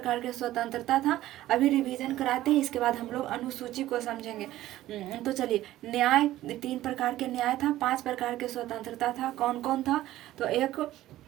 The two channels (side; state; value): left; quieter; 14.8 dB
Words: के स्वतंत्रता था। अभी रिवीजन कराते हैं, इसके बाद हम लोग अनुसूची को समझेंगे। तो चलिए, न्याय 3 प्रकार के न्याय था, 5 प्रकार के स्वतंत्रता था। कौन कौन था, तो एक